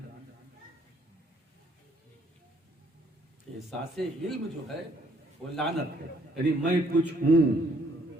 احساس علم جو ہے وہ لعنت ہے، یعنی میں کچھ ہوں،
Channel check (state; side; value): normal; both; correlation 0.65